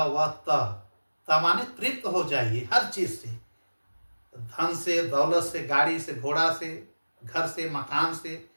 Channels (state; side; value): inverted; both; correlation -1.00